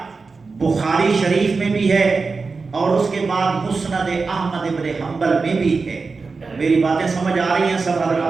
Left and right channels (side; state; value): left; quieter; 4.4 dB